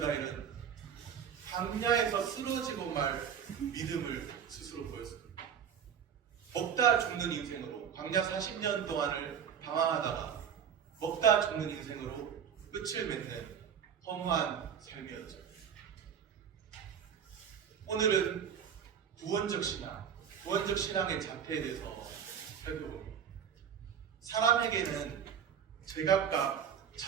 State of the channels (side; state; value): left; quieter; 8.0 dB